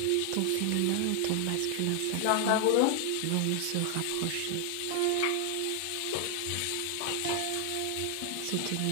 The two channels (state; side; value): different; both; correlation 0.00